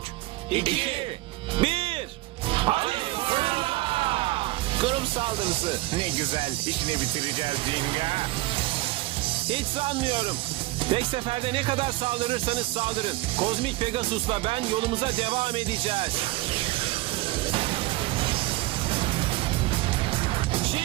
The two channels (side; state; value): left; quieter; 19.8 dB